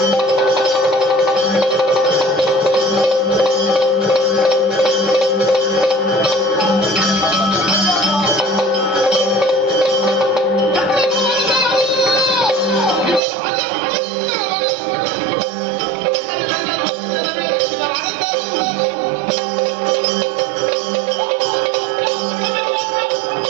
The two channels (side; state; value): left; drops out; at 13.2 s